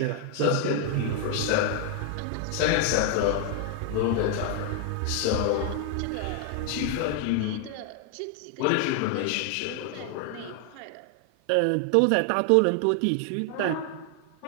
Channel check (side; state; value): both; different; correlation 0.00